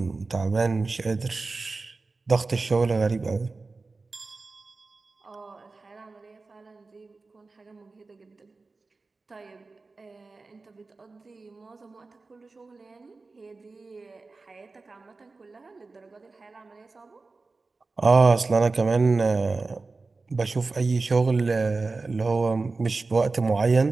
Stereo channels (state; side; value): quieter; left; 3.8 dB